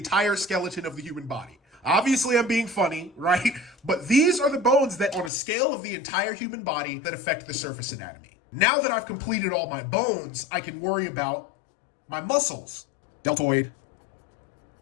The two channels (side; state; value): right; drops out; at 5.3 s